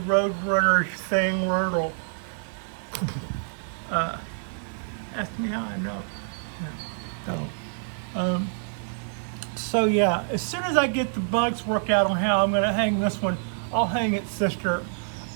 thing where it'll ask me how I know. So yeah, as soon as I get the bugs worked out on how I'm going to hang this one, I'll hang its sister.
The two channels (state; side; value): silent; left; digital silence